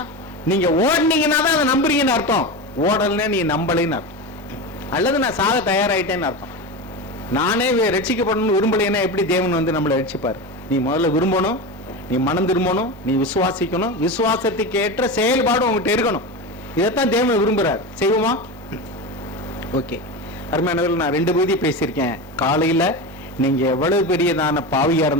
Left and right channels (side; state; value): both; normal; correlation 0.22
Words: நீங்க ஓடுனீங்கன்னா தான் அதை நம்புறீங்கன்னு அர்த்தம், ஓடலன்னா நீ நம்பலைன்னு அர்த்தம், அல்லது நான் சாக தயாராயிட்டேன்னு அர்த்தம். நானே ரட்சிக்கப்படணும்னு விரும்பலைன்னா எப்படி தேவன் வந்து நம்மளை ரட்சிப்பார்? நீ முதல்ல விரும்பணும், நீ மனம் திரும்பணும், நீ விசுவாசிக்கணும், விசுவாசத்துக்கு ஏற்ற செயல்பாடு உங்ககிட்ட இருக்கணும். இதைத்தான் தேவன் விரும்புறார். செய்வோமா? ஓகே, அருமையானவர்கள், நான் 2 பகுதி பேசியிருக்கேன். காலையில நீங்க எவ்வளவு பெரியதான பாவியா